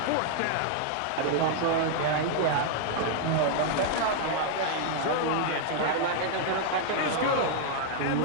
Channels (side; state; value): both; different; correlation -0.01